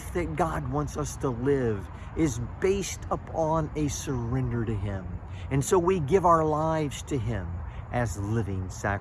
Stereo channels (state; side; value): identical; both; correlation 1.00